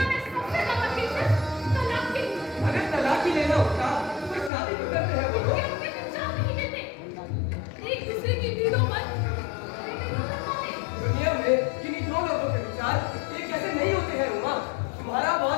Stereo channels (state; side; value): drops out; right; at 4.5 s